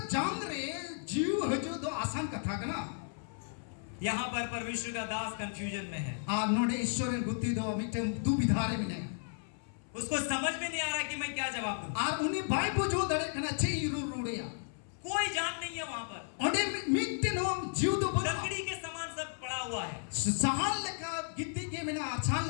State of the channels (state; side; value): silent; right; 55 dB below the other